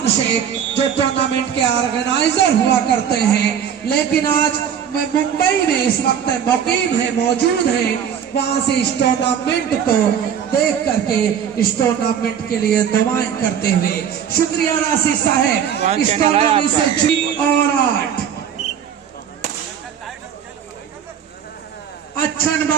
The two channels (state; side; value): quieter; left; 8.4 dB